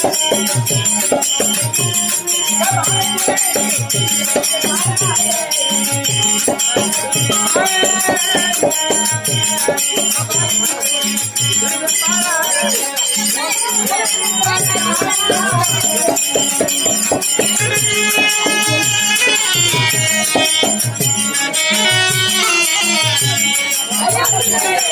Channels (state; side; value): identical; both; correlation 1.00